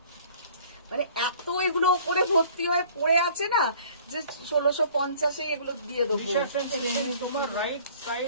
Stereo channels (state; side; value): inverted; both; correlation -0.52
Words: মানে এত এগুলো ওপরে ভর্তি হয়ে পড়ে আছে না যে 1650-এ এগুলো দিয়ে দেবো। তোমার রাইট